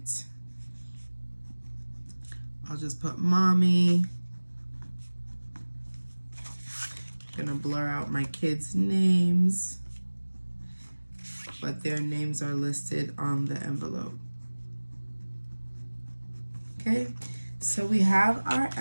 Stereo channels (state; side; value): inverted; both; correlation -1.00